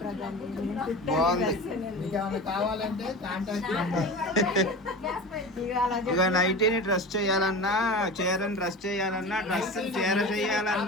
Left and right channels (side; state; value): both; normal; correlation 0.31